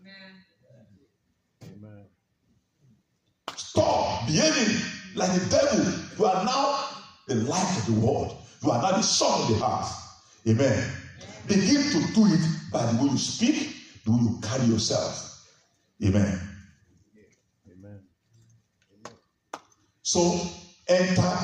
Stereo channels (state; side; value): identical; both; correlation 1.00